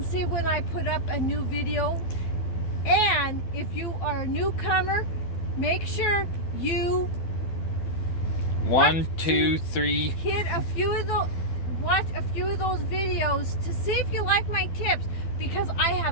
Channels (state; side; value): late; right; 12 ms